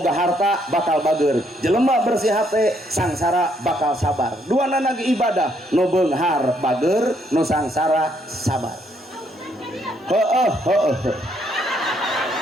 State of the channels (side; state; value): both; normal; correlation 0.71